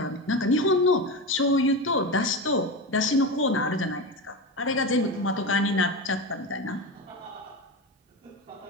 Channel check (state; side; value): normal; both; correlation 0.21